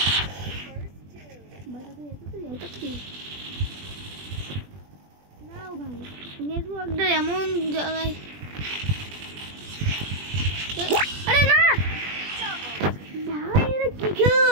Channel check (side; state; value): left; late; 20 ms